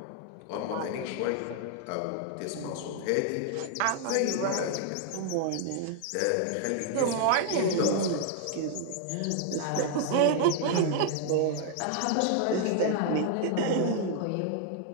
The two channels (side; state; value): both; different; correlation 0.00